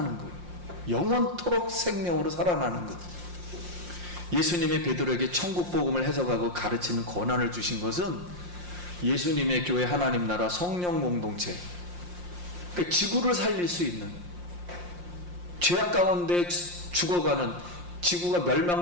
거예요. 영원토록 생명으로 살아나는 것. 예수님이 베드로에게 천국 복음을 해석하고 가르치는 권한을 주신 것은 예수님의 교회, 하나님 나라, 성령 공동체, 그러니까 지구를 살릴 수 있는, 죄악 가운데 죽어가는, 지구가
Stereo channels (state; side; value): late; left; 5.7 ms